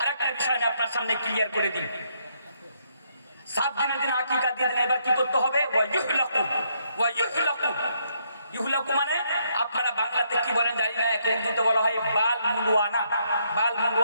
আরেকটা বিষয় আমি আপনার সামনে ক্লিয়ার করে দিই। 7 দিনের দিন আকিকা দিয়ে দিন, এবার কি করতে হবে? ইহুলাকু মানে আপনারা বাংলাতে কি বলেন জানি না, উর্দুতে বলা হয় বাল মুন্ডুয়ানা। বাল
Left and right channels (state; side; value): inverted; both; correlation -0.73